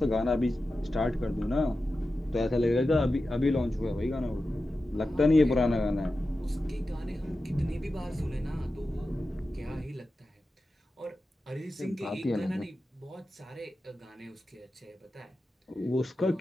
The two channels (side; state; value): both; normal; correlation 0.93